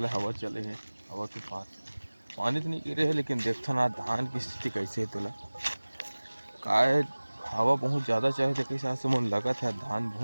हवा चले हैं, हवा के पास पानी तो नहीं गिरे है, लेकिन देखता ना धान की स्थिति कैसे है तुला काय। हवा बहुत ज़्यादा चाहे थे, कई साल से मन लगा था धान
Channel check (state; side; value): inverted; both; correlation -1.00